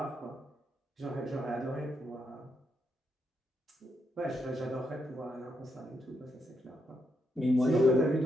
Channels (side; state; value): both; normal; correlation 0.80